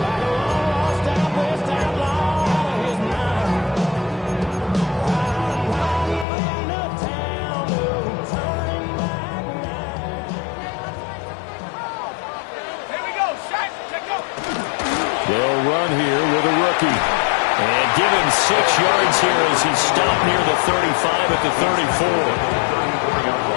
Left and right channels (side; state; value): right; drops out; at 6.2 s